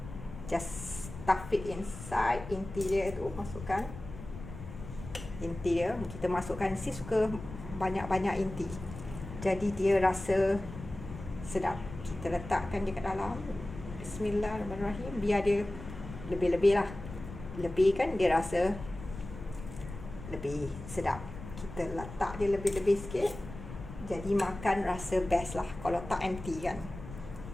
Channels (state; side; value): noise; left; rumble, 12 dB below the sound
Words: Just stuff it inside. Inti dia tu masukkan. Inti dia kita masukkan. Sis suka banyak-banyak inti, jadi dia rasa sedap. Kita letakkan dia kat dalam. Bismillahirrahmanirrahim. Biar dia lebih-lebih lah. Lebih kan dia rasa lebih sedap. Kita letak dia lebih-lebih sikit, jadi makan rasa best lah. Kalau tak empty kan,